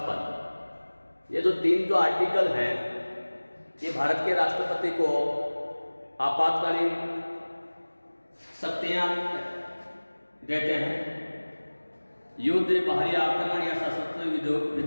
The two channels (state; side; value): inverted; both; correlation -1.00